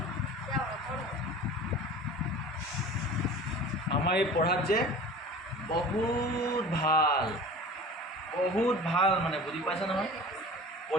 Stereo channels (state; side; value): normal; both; correlation 0.39